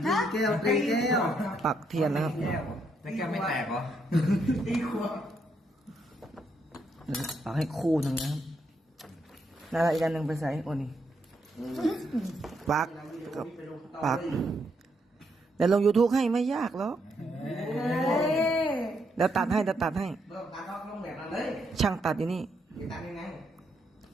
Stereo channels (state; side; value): normal; both; correlation 0.77